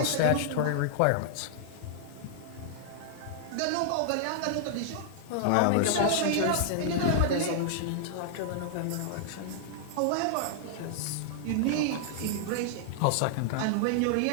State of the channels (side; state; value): both; different; correlation -0.01